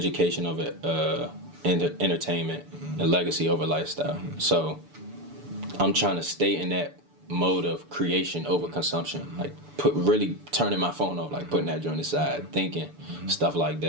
over entertainment, and legacy over lifestyle." So I'm trying to stay in that mode of creation over consumption, like really turning my phone off, like putting that joint aside, thinking stuff like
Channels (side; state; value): left; late; 6.9 ms